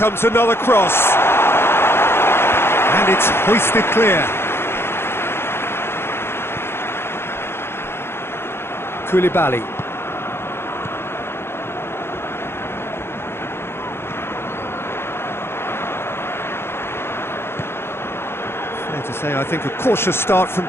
another cross. And it's hoisted clear. Koulibaly. Fair to say, I think, a cautious start from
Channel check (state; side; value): late; right; 0.12 ms